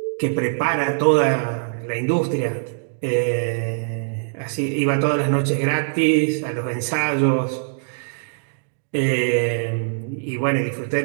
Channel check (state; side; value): silent; left; digital silence